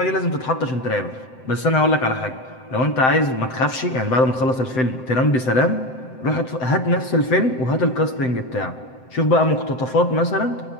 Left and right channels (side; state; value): right; late; 7.8 ms